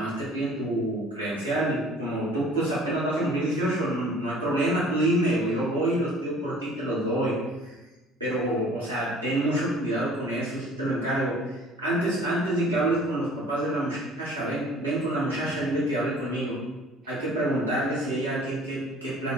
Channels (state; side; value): normal; both; correlation 0.50